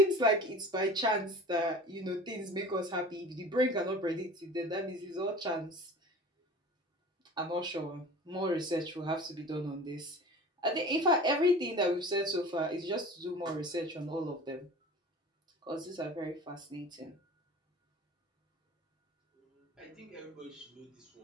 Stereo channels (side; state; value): both; normal; correlation 0.40